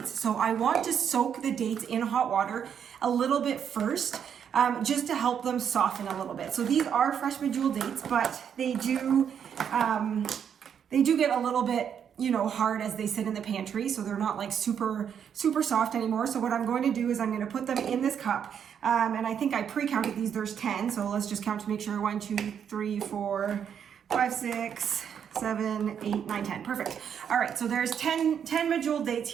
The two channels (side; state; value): left; quieter; 8.1 dB